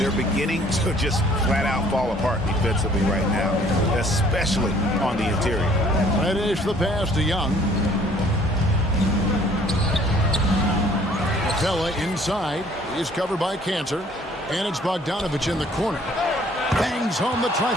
beginning to just flat out fall apart defensively right now, especially on the interior. Finish the pass to Young. Capella inside is covered by Kanter, and it's Bogdanovich in the corner. Bangs home the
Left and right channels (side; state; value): both; normal; correlation 0.58